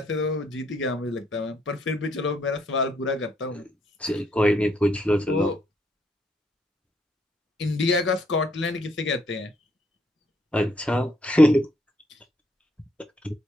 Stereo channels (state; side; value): normal; both; correlation 0.71